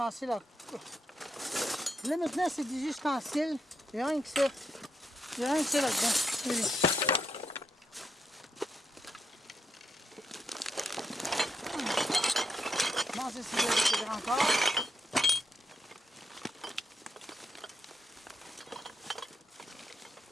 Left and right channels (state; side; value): normal; both; correlation 0.81